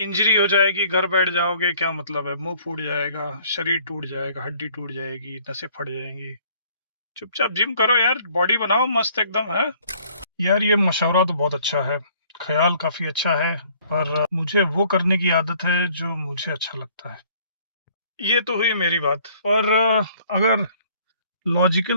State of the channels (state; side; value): inverted; both; correlation -0.59